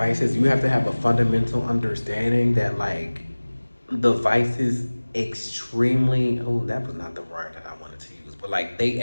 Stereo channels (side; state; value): both; inverted; correlation -1.00